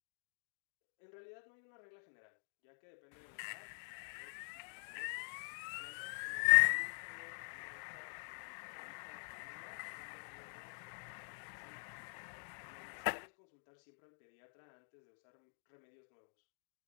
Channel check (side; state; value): right; silent; digital silence